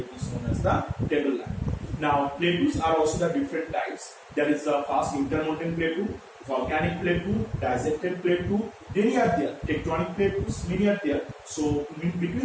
is known as the tableland. Now plateaus are also the different types. There is the first intermountain plateau, volcanic plateau, dissected plateau. Many are there. Tectonic plateaus, many are there. So in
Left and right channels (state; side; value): identical; both; correlation 1.00